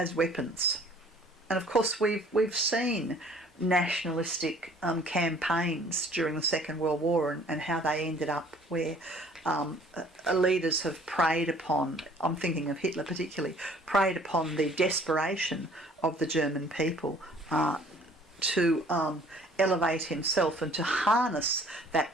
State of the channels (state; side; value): normal; both; correlation 0.55